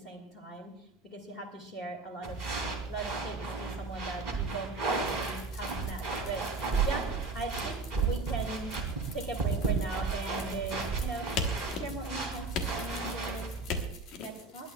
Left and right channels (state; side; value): quieter; left; 3.2 dB